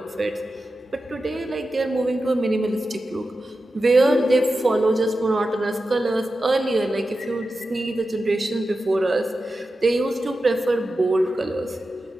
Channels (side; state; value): both; normal; correlation 0.92